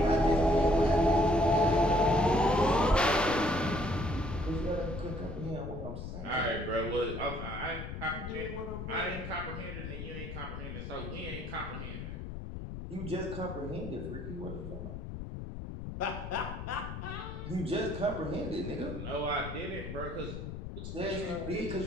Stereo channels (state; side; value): noise; left; rumble, 8 dB below the sound